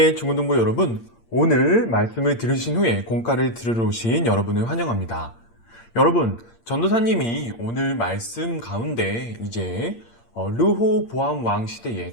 중고등부 여러분. 오늘 말씀을 들으신 후에 공과를 들으러 오신 여러분을 환영합니다. 여러분, 전도사님이 오늘 말씀 가운데 이제 르호보암 왕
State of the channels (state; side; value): late; right; 8.7 ms